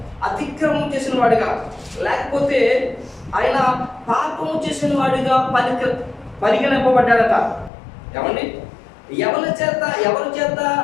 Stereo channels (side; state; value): right; drops out; at 7.7 s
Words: అతిక్రమం చేసిన వాడిగా, లేకపోతే ఆయన పాపము చేసిన వాడిగా పరిగణింపబడ్డాడట. ఏమండి, ఎవరి చేత